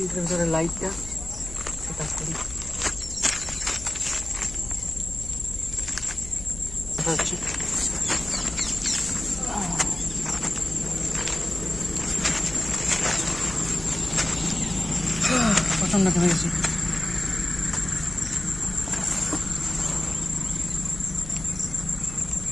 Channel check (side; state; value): left; noise; hum, 13 dB below the sound